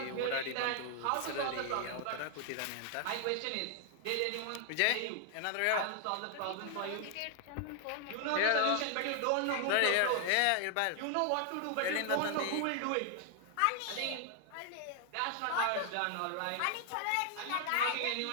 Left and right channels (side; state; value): both; different; correlation 0.00